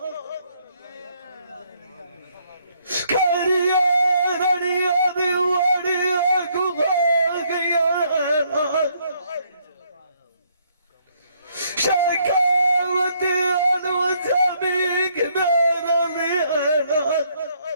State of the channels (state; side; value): inverted; both; correlation -0.69